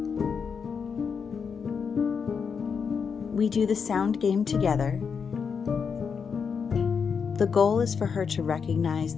We do the sound game together. The goal is for her to recognize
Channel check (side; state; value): right; quieter; 6.2 dB